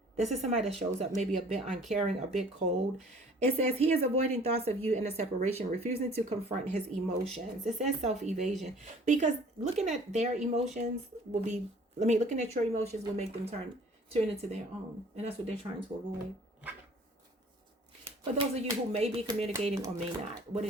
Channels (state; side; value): normal; both; correlation 0.52